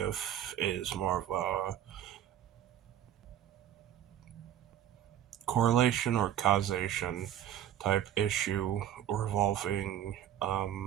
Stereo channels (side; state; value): left; quieter; 11.0 dB